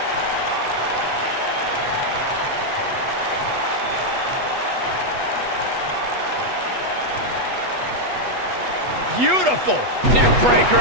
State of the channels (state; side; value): late; left; 8.1 ms